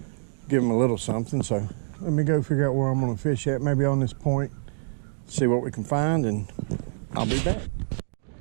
give them a little something. So let me go figure out where I'm gonna fish at, maybe on this point, see what we can find, and I'll be back.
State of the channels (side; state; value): left; silent; digital silence